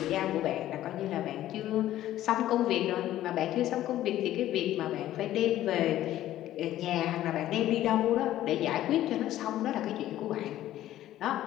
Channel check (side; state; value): right; quieter; 13.5 dB